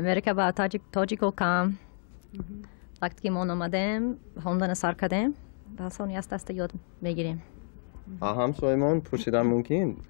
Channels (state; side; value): silent; right; digital silence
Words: با تاجیکو کام وقتی که ما آمدیم خوندن سر کردیم به آسانی از دست یاد میگیریم. همسایه‌مان پرسیدن ممکن